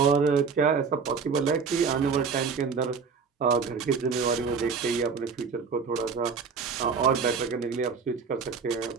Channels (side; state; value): left; quieter; 5.6 dB